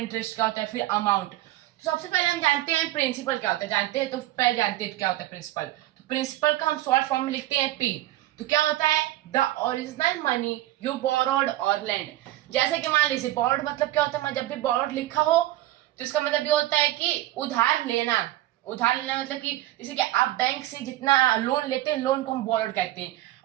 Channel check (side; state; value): left; quieter; 15.7 dB